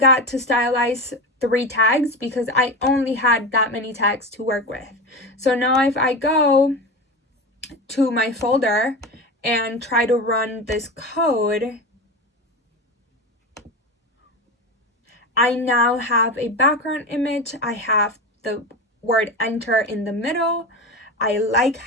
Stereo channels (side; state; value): both; normal; correlation 0.24